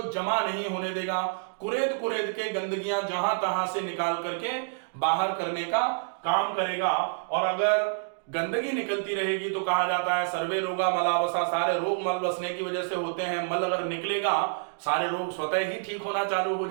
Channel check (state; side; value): silent; left; digital silence